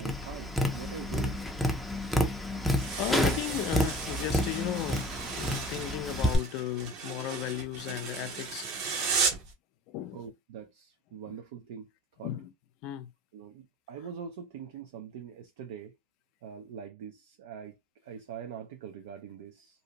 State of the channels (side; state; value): both; normal; correlation 0.46